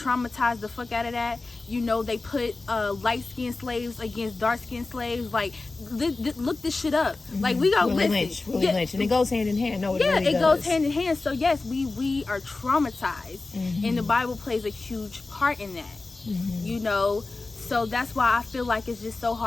the fuck out of that. You know, they put light-skinned slaves against dark-skinned slaves. Like, look this shit up. Like, we go Willie Lynch, and it goes hand in hand. No, it really it does. goes hand in hand. So yes, we are traumatized, and the Bible plays a huge part in that. You know, so that's why I feel like it's just so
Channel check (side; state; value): right; quieter; 3.5 dB